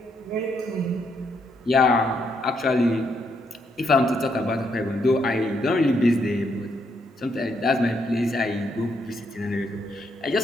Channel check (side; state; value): both; normal; correlation 0.75